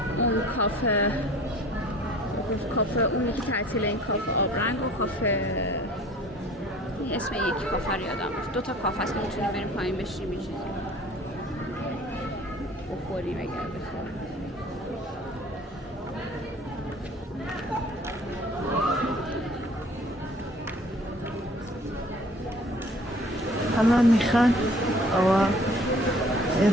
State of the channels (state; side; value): normal; both; correlation 0.50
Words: اون کافه اونی که تعطیل، این کافه آبرنگ و کافه اسم یکی کافه رو یادم رفت. 2 تا کافه هست که میتونیم بریم پایین بشیم یه چیزی بخوریم اگر بخوریم. همه میخوان و